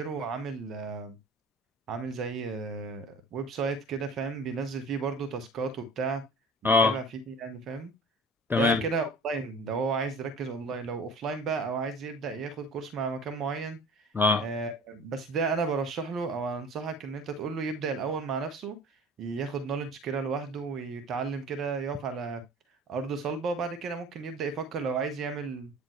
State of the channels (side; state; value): both; normal; correlation 0.43